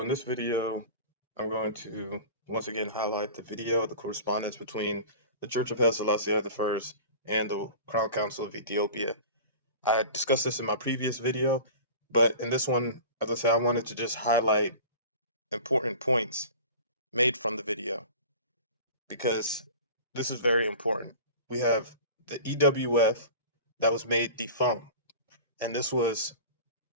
this video, I'm going to once again highlight the correspondence between the Church of Haile Selassie I and the Crown Council of Ethiopia. I discussed this in my previous video, but in this one, as I said, I wanted to just highlight important points made from the video because this is very important. We have the EWF that was made defunct, and this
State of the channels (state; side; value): inverted; both; correlation -0.37